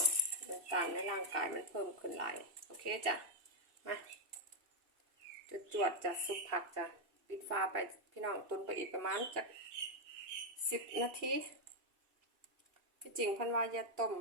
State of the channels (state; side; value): late; left; 2.8 ms